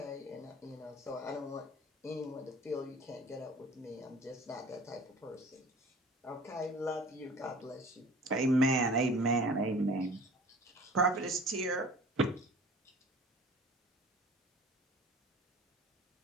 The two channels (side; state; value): both; normal; correlation 0.45